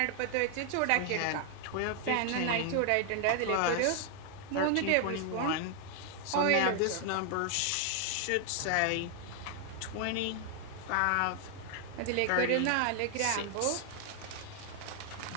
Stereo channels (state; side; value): different; both; correlation 0.00